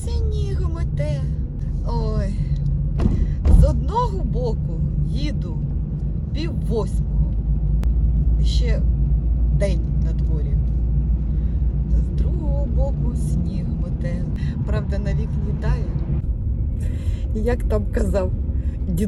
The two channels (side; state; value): both; identical; correlation 1.00